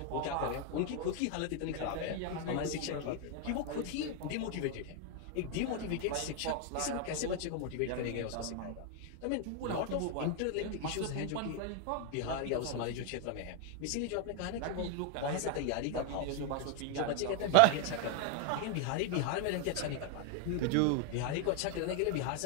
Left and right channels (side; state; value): both; different; correlation 0.00